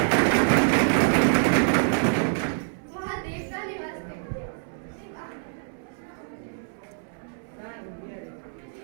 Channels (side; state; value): left; silent; 61 dB below the other